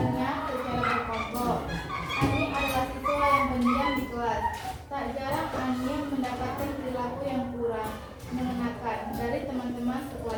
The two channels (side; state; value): both; identical; correlation 1.00